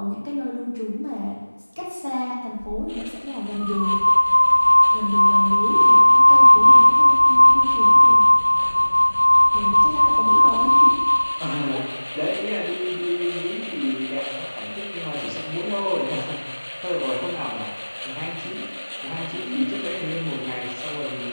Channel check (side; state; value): both; inverted; correlation -1.00